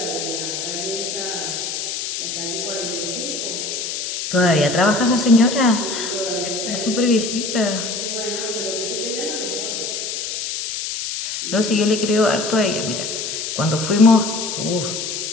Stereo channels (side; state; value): left; noise; hiss, 4 dB below the sound